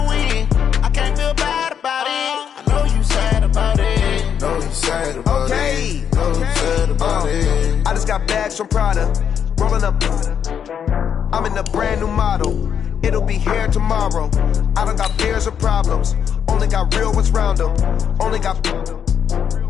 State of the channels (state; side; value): quieter; right; 8.1 dB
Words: win. I can't feel bad about it. I know you sad about it. Know you sad about it. Know you sad about it. I just got bags from Prada. Rolling up. I'm in a brand new model. It'll be here tomorrow. I don't got fears or problems. Only got real ones round them. Only got.